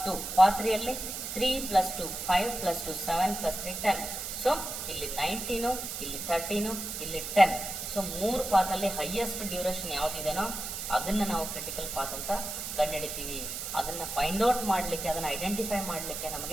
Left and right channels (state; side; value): noise; right; hiss, 6 dB below the sound